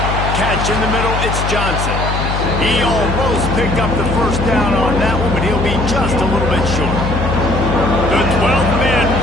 Catch in the middle, it's Johnson. He almost picked up the first down on that one, but he'll be just a little bit short. The 12th man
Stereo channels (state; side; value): noise; left; hum, 2 dB below the sound